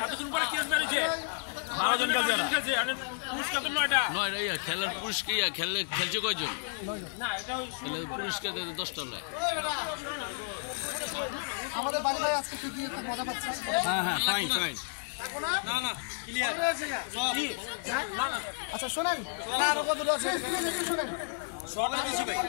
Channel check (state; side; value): silent; right; 57 dB below the other